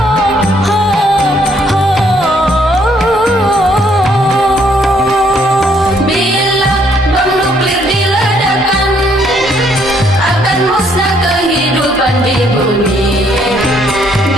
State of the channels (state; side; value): normal; both; correlation 0.68